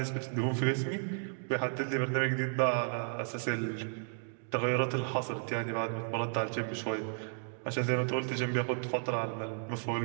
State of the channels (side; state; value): left; silent; 55 dB below the other